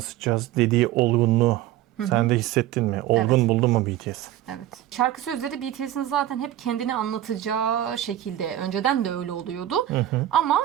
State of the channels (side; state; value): left; quieter; 13.3 dB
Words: dediği olgunluğu sen de hissettin mi? Olgun Evet. buldun mu BTS? Evet. Şarkı sözleri BTS'in zaten hep kendini anlatacağı şekilde. Önceden de öyle oluyordu. Ama